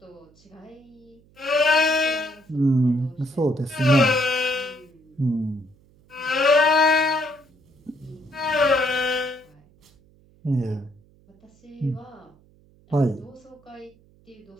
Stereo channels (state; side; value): noise; right; hum, 30 dB below the sound